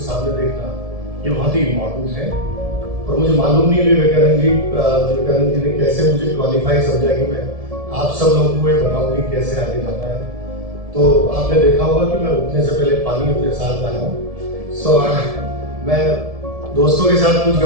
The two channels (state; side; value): late; left; 1.7 ms